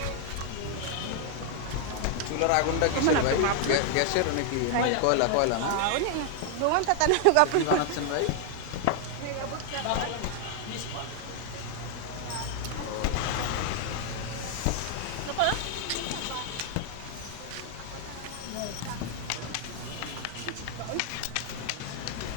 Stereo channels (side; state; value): both; different; correlation 0.00